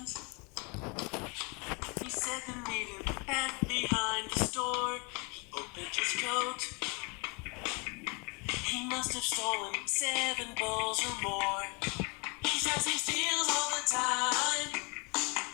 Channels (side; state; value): right; quieter; 31.1 dB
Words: He said the meeting back behind the store. He opened his coat. He must have stolen 7 balls or more. He says he steals all the time,